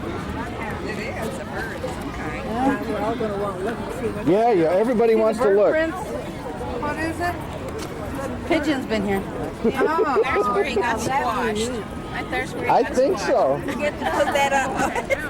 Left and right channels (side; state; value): both; identical; correlation 1.00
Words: Yeah, everybody wants to Bird look. prints. What is it? Pigeon's been here. Oh, that's where he got squashed. There's where he I got think squashed. so. We get to put that